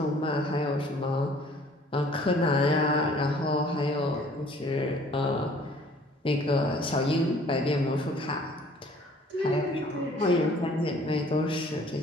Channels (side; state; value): both; normal; correlation 0.55